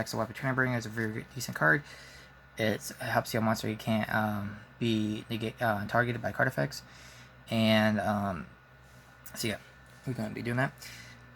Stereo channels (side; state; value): both; identical; correlation 1.00